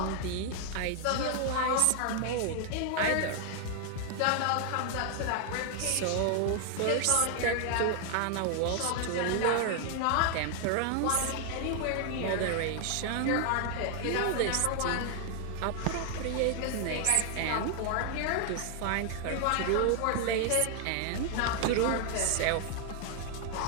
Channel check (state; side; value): different; both; correlation 0.00